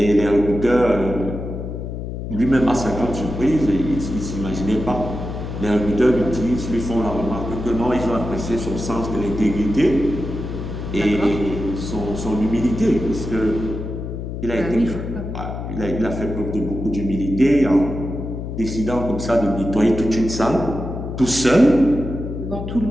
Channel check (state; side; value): noise; left; hum, 6 dB below the sound